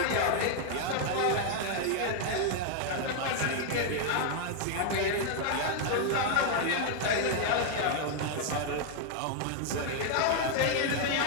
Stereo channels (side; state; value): both; different; correlation 0.00